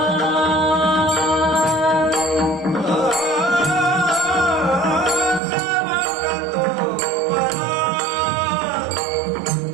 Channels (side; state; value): left; drops out; at 5.4 s